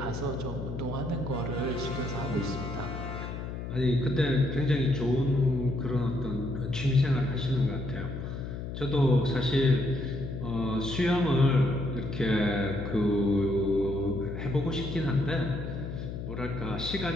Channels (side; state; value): left; noise; hum, 6 dB below the sound